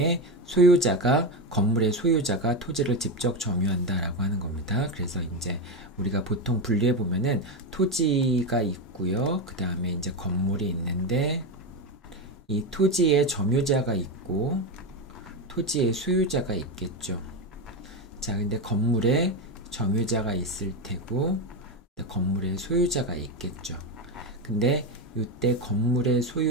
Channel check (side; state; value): both; normal; correlation 0.13